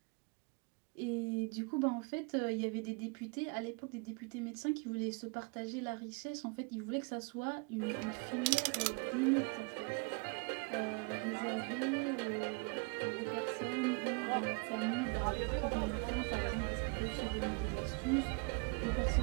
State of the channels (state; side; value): quieter; left; 32.6 dB